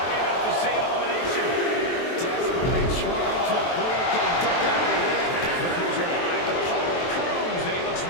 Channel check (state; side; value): late; right; 23 ms